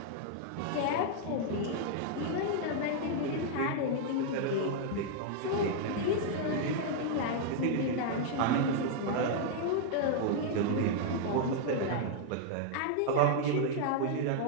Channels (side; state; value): both; different; correlation -0.01